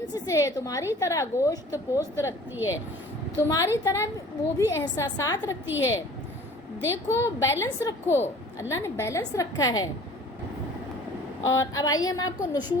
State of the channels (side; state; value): both; normal; correlation 0.48